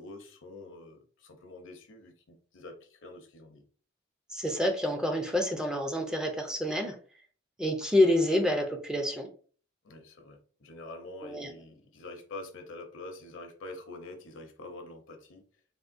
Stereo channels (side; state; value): both; normal; correlation 0.73